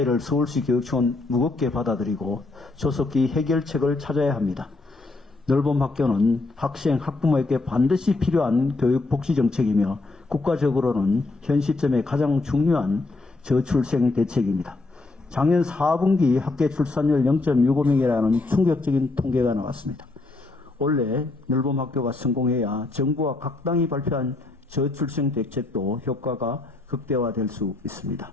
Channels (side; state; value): right; quieter; 3.3 dB